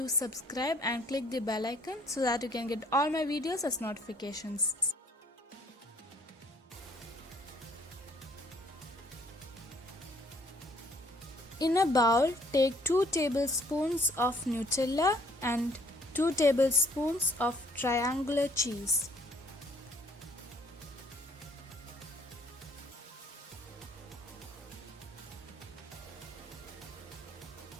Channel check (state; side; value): normal; both; correlation 0.62